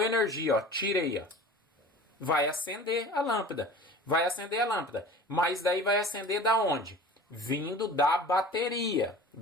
energia, ó, tirei, ó. Vai acender a lâmpada. Vai acender a lâmpada. Mas daí vai acender da onde? Vindo da bateria.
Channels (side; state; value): both; normal; correlation 0.40